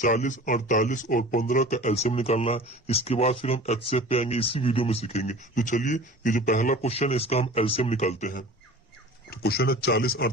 48 और 15 का एलसीएम निकालना है। इसके बाद फिर हम एचसीएफ पे आएंगे, इसी वीडियो में सीखेंगे। तो चलिए, ये जो पहला क्वेश्चन है इसका हम एलसीएम निकालते हैं। तो क्वेश्चन है 40,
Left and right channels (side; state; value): both; normal; correlation 0.40